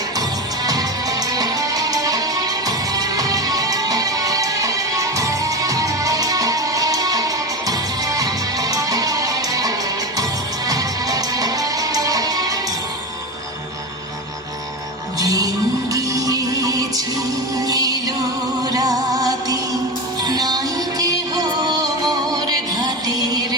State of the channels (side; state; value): both; normal; correlation 0.22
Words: দিন গিয়েছে এলো রাতে নাই কেহ মোর ঘাটের